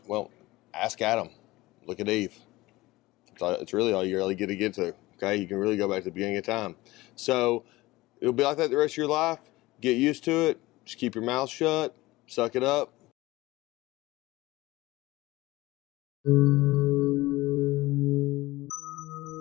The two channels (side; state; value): right; quieter; 19.3 dB